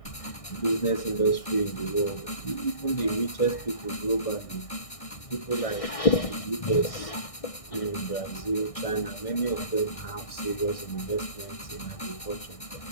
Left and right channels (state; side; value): late; right; 1.6 ms